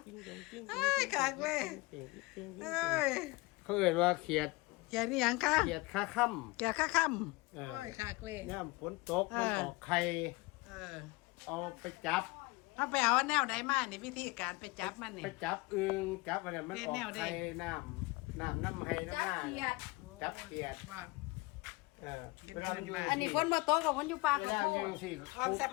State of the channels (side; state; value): right; quieter; 23.7 dB